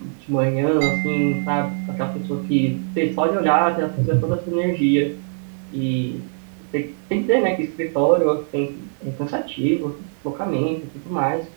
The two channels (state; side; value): silent; left; digital silence